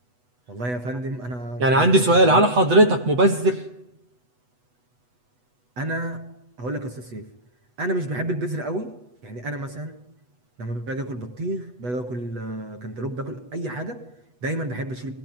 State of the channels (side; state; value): left; late; 8.1 ms